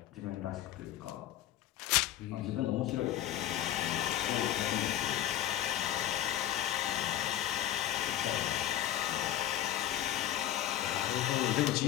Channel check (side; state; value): right; quieter; 12.4 dB